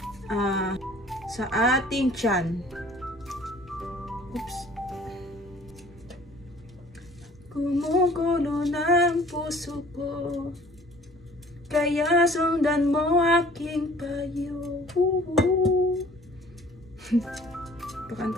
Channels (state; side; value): normal; both; correlation 0.51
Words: tiyan. Oops. Gumugulo ng puso ko, kaya sundan mo aking payo.